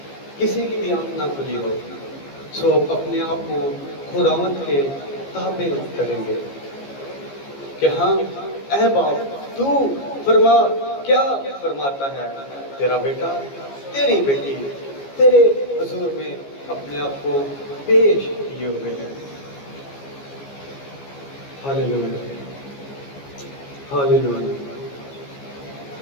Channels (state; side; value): late; right; 15 ms